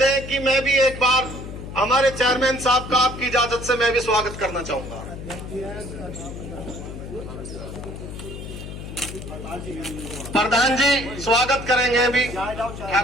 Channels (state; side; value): noise; left; hum, 10 dB below the sound